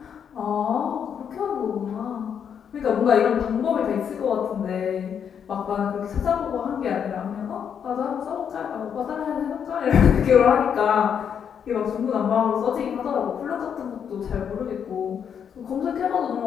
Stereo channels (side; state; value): right; quieter; 7.8 dB